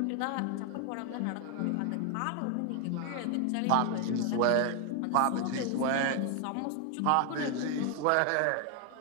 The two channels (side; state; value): both; different; correlation 0.00